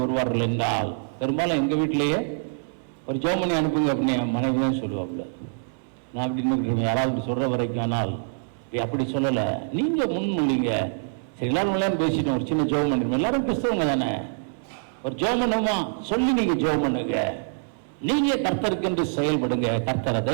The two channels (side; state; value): left; silent; 62 dB below the other